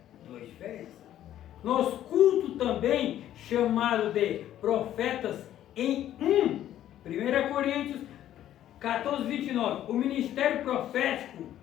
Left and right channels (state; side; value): quieter; right; 12.0 dB